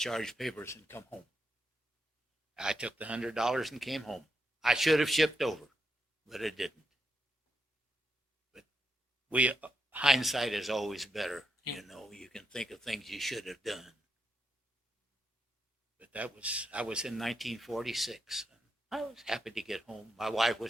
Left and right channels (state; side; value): normal; both; correlation 0.83